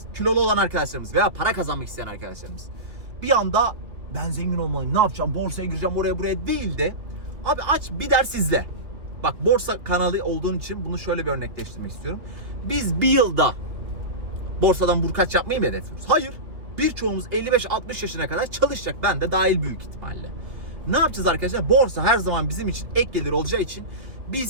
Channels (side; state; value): left; late; 2.7 ms